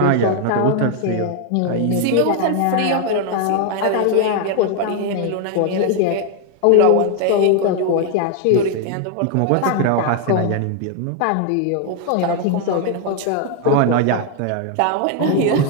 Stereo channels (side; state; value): both; different; correlation 0.00